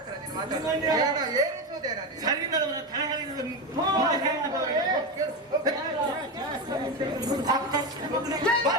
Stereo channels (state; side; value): normal; both; correlation 0.16